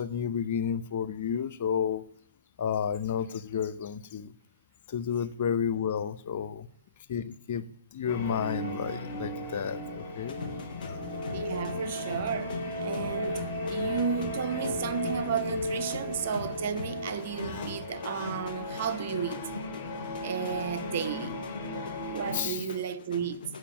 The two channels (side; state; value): both; inverted; correlation -0.47